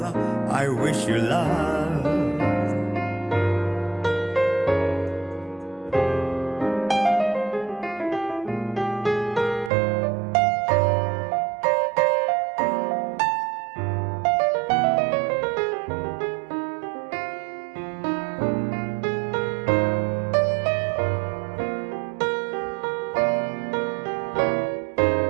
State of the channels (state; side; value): drops out; left; at 9.7 s